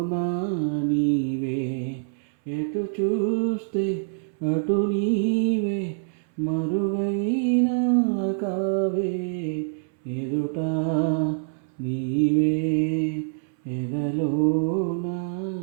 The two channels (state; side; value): silent; left; 62 dB below the other